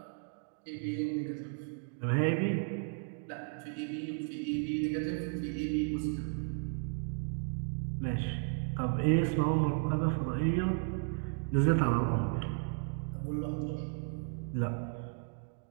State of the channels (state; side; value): silent; left; 55 dB below the other